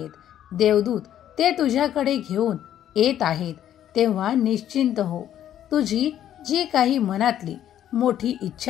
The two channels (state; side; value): quieter; right; 11.0 dB